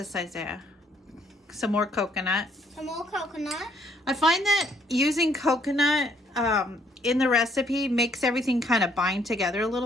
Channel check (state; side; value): normal; both; correlation 0.67